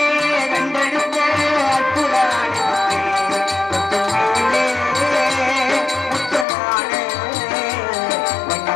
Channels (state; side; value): drops out; right; at 6.5 s